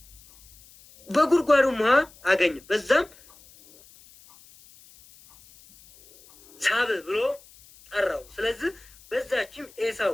በጉድጓዱም ውሃ አገኘ። በዛም ሳብ ብሎ ጠራው። ስለዚህ በዛችም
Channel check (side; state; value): left; noise; hiss, 25 dB below the sound